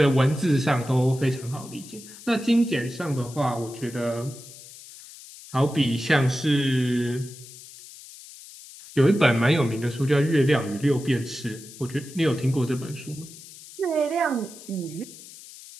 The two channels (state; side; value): noise; left; hiss, 17 dB below the sound